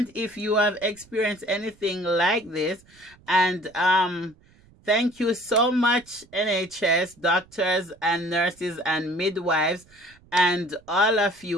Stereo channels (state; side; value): noise; right; rumble, 29 dB below the sound